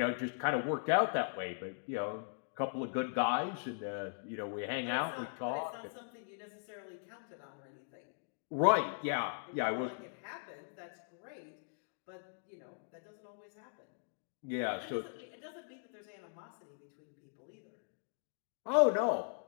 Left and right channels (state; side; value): silent; right; digital silence